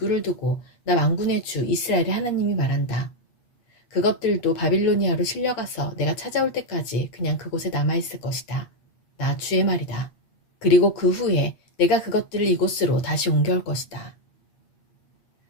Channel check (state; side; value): late; right; 8.5 ms